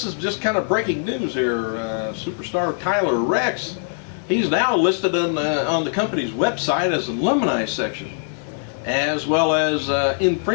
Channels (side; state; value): right; silent; digital silence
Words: is just kind of breaking news here. Superstar Tyler Reks, he's now listed on the company's website as an alumni section, as well as